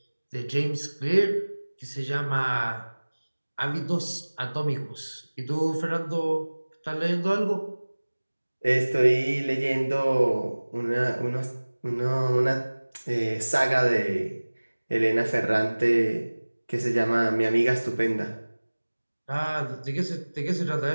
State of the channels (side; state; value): both; inverted; correlation -1.00